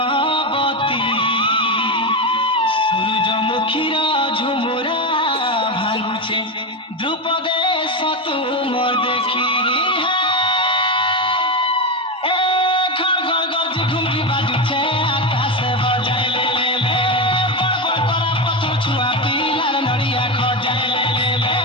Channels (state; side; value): normal; both; correlation 0.14